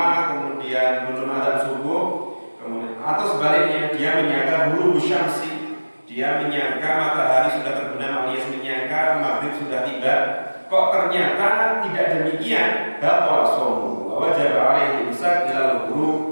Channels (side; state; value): both; inverted; correlation -1.00